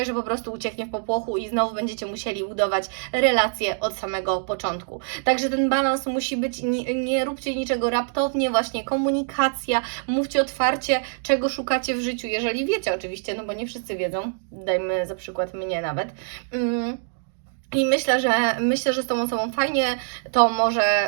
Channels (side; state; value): left; silent; 62 dB below the other